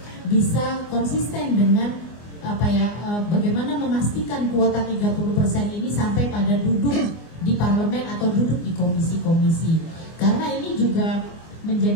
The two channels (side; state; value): right; late; 24 ms